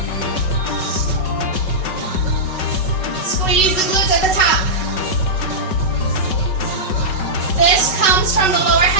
Squeeze the glutes at the top. This comes from the lower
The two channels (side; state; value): right; late; 5.3 ms